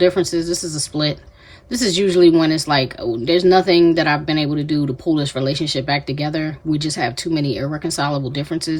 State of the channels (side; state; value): both; identical; correlation 1.00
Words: This is a split. This is usually when it's like, oh, there's nothing that I've been able to do to pull this relationship back together. We just have too many irreconcilable